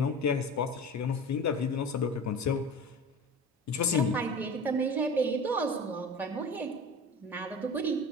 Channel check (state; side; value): normal; both; correlation 0.34